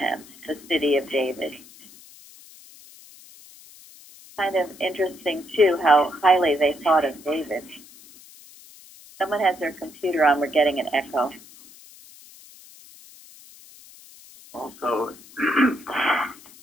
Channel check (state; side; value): noise; left; hiss, 22 dB below the sound